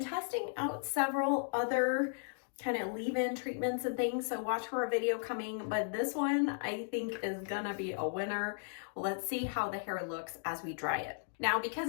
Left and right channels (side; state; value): right; silent; digital silence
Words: out several other kind of leave-in treatments and things, so watch for a video coming, but this one I think is gonna be a winner. Let's see how the hair looks as we dry it. Now, because